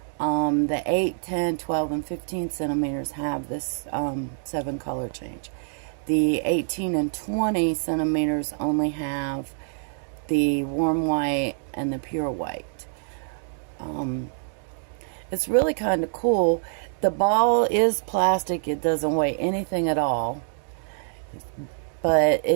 The 8, 10, 12, and 15 centimeters have this 7 color change. The 18 and 20 centimeters only have the warm white and the pure white. It's really kind of cool. The ball is plastic. It doesn't weigh anything at all. But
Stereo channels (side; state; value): left; silent; digital silence